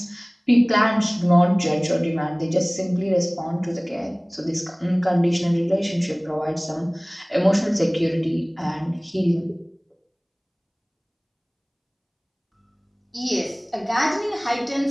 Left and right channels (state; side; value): identical; both; correlation 1.00